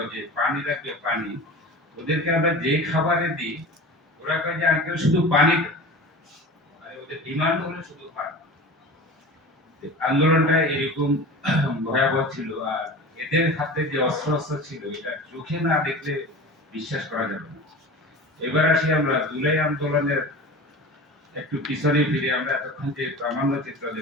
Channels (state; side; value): normal; both; correlation 0.34